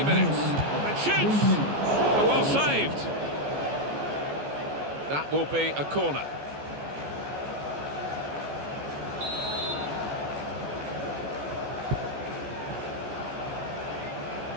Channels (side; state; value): left; late; 14 ms